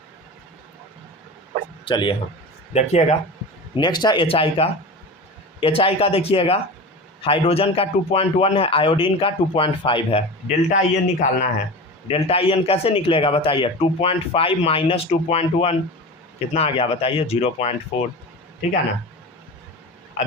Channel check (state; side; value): normal; both; correlation 0.30